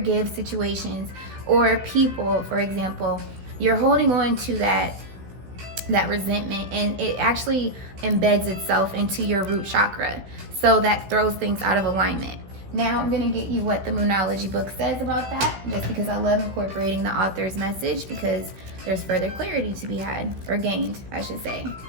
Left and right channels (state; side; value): late; left; 16 ms